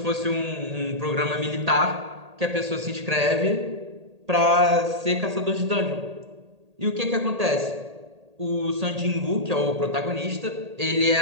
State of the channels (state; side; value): late; left; 1.8 ms